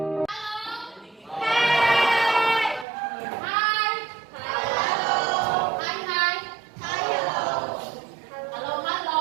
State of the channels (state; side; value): drops out; left; at 2.9 s